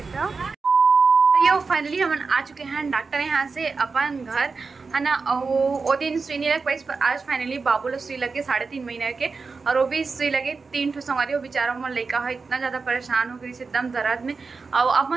ये फाइनली हम आ चुके हैं डॉक्टर यहाँ से अपन घर है ना। और वो दिन सुई नहीं लग पाई, पर आज फाइनली बाबू लोग सुई लगे 3.5 महीने के, और वो भी सुई लगे 3 ठो संगवारी। वो बेचारा मन लड़का है इतना ज़्यादा परेशान हो गई से एकदम दर्द में। और आप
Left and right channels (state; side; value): quieter; left; 4.5 dB